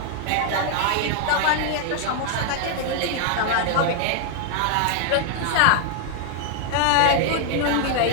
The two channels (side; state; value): both; different; correlation 0.00